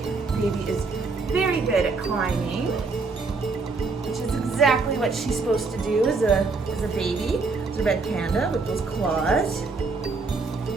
baby is very good at climbing, which is exactly what she's supposed to do as a baby. It's a red panda with those claws.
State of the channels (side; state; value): left; quieter; 4.1 dB